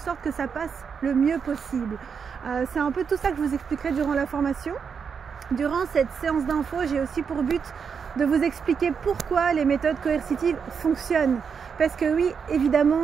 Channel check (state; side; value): quieter; left; 6.4 dB